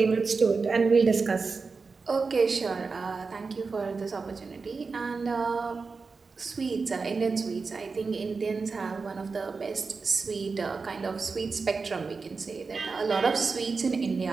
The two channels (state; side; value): quieter; left; 4.5 dB